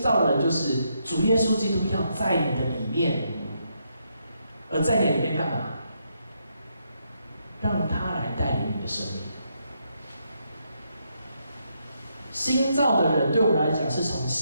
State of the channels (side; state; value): both; inverted; correlation -0.78